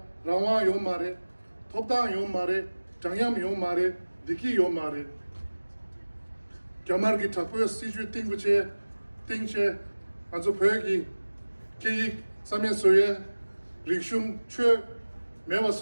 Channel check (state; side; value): inverted; both; correlation -1.00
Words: rawa yo mare thopda yo mare changyam yo mare diki yo mare kyamar gi thakwe siju tingche azo phegi ki samye soye rikshum chwe mewa